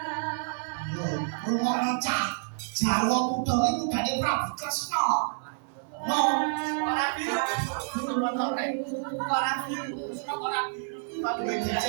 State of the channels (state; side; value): silent; left; digital silence